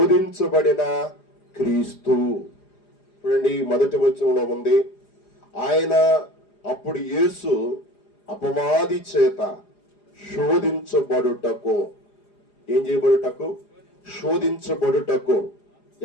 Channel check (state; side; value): late; right; 4.9 ms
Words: క్రీస్తు. చూడండి, 1వ వచనంలో ఉంది, ఆయన అప్పుడు యేసు అపవాది చేత శోధించబడుటకు. ఏం చేయబడుటకు? శోధించబడుటకు.